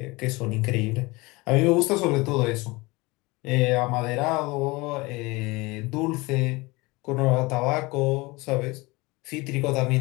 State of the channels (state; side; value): quieter; right; 23.5 dB